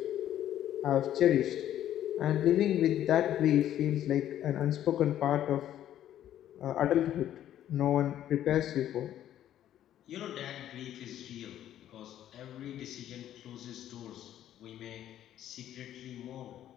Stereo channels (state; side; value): quieter; right; 11.6 dB